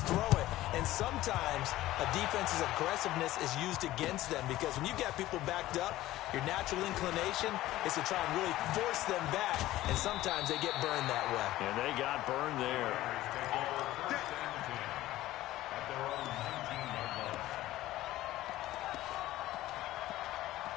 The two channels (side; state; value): right; quieter; 15.7 dB